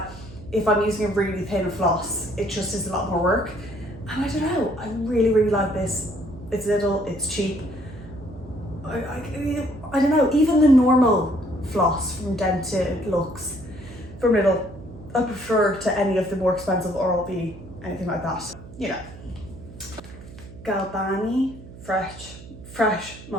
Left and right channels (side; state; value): right; noise; hum, 16 dB below the sound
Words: if I'm using a really thin floss, it just is a lot more work. And I don't know, I really, really like this. It's little, it's cheap. I don't know, even the normal floss from Dentalux, from Little, I prefer to any of the more expensive Oral-B, anything like that. You know. Galbani fresh